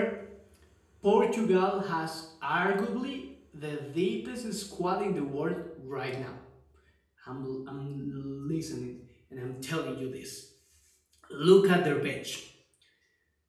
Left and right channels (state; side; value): identical; both; correlation 1.00